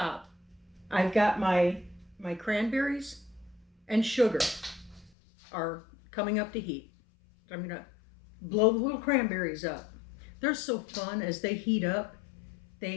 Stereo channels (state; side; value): drops out; right; at 5.1 s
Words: I've got my cranberries and sugar are coming up to heat. I'm going to blow the little cranberries up. They're so fun as they heat up.